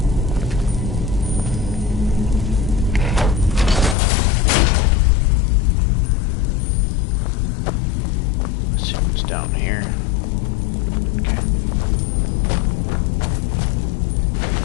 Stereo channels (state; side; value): drops out; right; at 4.0 s